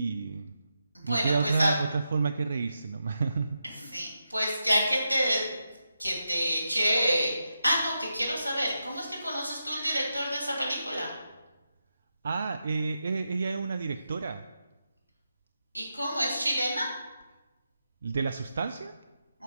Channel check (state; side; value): inverted; both; correlation -0.87